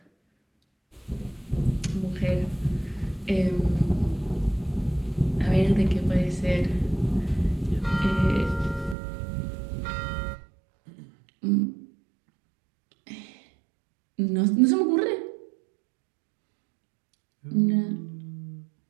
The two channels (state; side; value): drops out; left; at 9.0 s